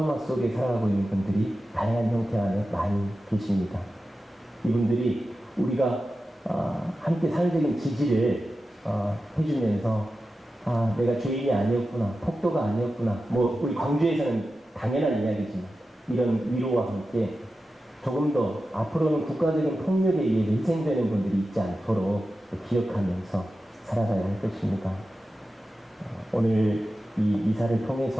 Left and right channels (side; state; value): both; normal; correlation 0.93